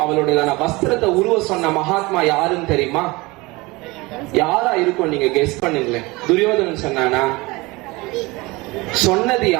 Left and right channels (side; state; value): left; quieter; 23.1 dB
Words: அவளுடைய வஸ்திரத்தை உருவ சொன்ன மகாத்மா யாருன்னு தெரியுமா? யாரா இருக்கும் நீங்க கெஸ் பண்ணுங்களேன். துரியோதனன் சொன்னானா? சொன்னது